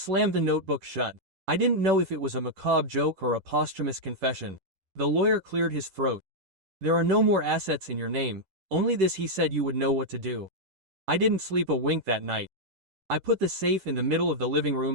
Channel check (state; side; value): late; left; 10 ms